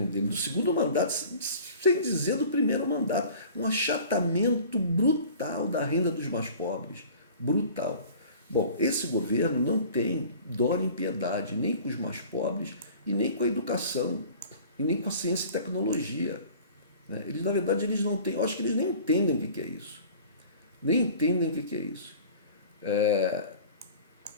dele, do segundo mandato, sem dizer do primeiro mandato. Um achatamento brutal da renda dos mais pobres. Brutal. Bom, esse governo não tem dó nem piedade, nem com os mais pobres e nem com a educação, e nem com a ciência e tecnologia. Né? Eles, na verdade, eles não têm, eu acho que eles nem entendem o que é isso. Nem entendem o que é isso.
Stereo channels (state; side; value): inverted; both; correlation -0.45